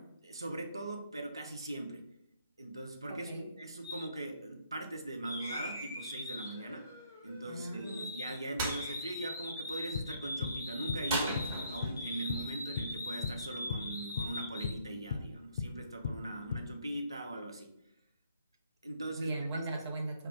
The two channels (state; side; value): inverted; both; correlation -0.69